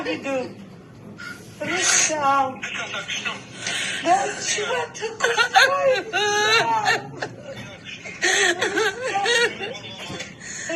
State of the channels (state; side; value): identical; both; correlation 1.00